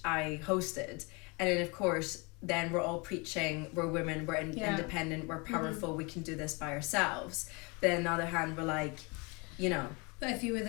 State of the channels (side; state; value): right; quieter; 29.2 dB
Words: I hosted, and then of course then we're all preaching we're women, we're independent, we're powerful, we can do this by ourselves. But on the other hand, we're like, you know, But if you were